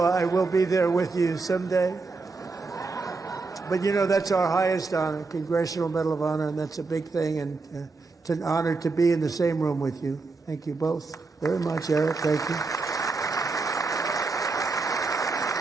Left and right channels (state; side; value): quieter; left; 4.0 dB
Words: I will be there with you someday. But you know, that's our highest honor, Congressional Medal of Honor, and that's a big thing, and it's an honor to be in the same room with you. Thank you both very much, Eric. Thank you.